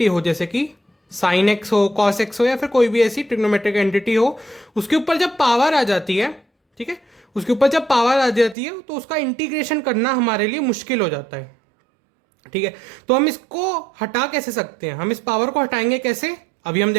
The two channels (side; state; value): left; drops out; at 8.6 s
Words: हो, जैसे कि साइन एक्स हो, कॉस एक्स हो, या फिर कोई भी ऐसी ट्रिग्नोमेट्रिक एंटिटी हो, उसके ऊपर जब पावर आ जाती है, ठीक है, उसके ऊपर जब पावर आ जाती है तो उसका इंटीग्रेशन करना हमारे लिए मुश्किल हो जाता है। ठीक है, तो हम इसको हटा कैसे सकते हैं, हम इस पावर को हटाएंगे कैसे, अभी हम